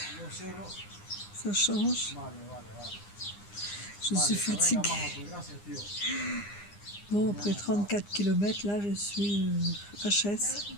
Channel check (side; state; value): right; late; 9.8 ms